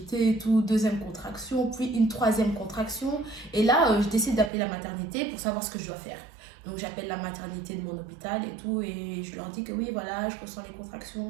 et tout. Deuxième contraction, puis une troisième contraction. Et là, je décide d'appeler la maternité pour savoir ce que je dois faire. Donc j'appelle la maternité de mon hôpital et tout, et je leur dis que oui, voilà, je ressens les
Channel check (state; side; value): drops out; left; at 4.5 s